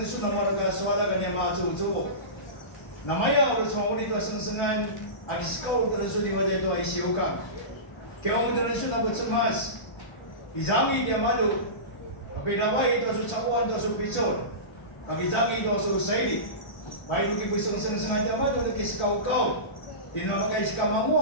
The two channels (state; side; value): late; right; 1.3 ms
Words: su na maraga swala ga ne ma chu chu. Namaya ur chonguri to sengsengan agis kau dan su di wajah to ai siuka. Keong dan su na butsemas. Izami dia madu. Tapi ramai to su cawan to su picor. Bagi izami to su saidi. Bai duki buseng sengan dia madu ke kau kau. Dinamakai